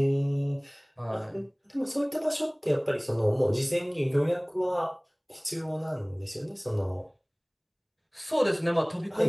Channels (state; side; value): identical; both; correlation 1.00